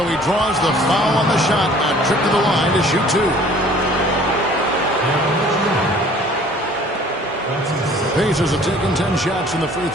he draws the foul on the shot. A trip to the line to shoot two. The Pacers have taken 10 shots from the free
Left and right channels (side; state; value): both; normal; correlation 0.52